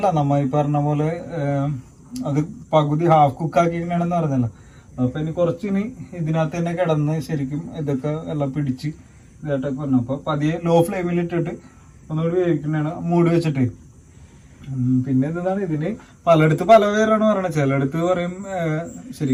നമ്മ ഈ പറഞ്ഞ പോലെ അത് പകുതി ഹാഫ് കുക്ക് ആക്കിയാണെന്ന് പറഞ്ഞല്ലോ. അപ്പൊ ഇനി കുറച്ചിനി ഇതിനകത്ത് തന്നെ കിടന്ന് ശരിക്കും ഇതൊക്കെ എല്ലാം പിടിച്ച് ഇതായിട്ടൊക്കെ പറഞ്ഞു. അപ്പൊ പതിയെ ലോ ഫ്ലെയിമിൽ ഇട്ടിട്ട് ഒന്നുകൂടി വേവിക്കുന്നതാണ് മൂടി വെച്ചിട്ട്. പിന്നെ എന്താണ് ഇതിന് പലയിടത്ത് പല പേരാണ് പറയണത്. ചിലയിടത്ത് പറയും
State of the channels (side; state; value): both; identical; correlation 1.00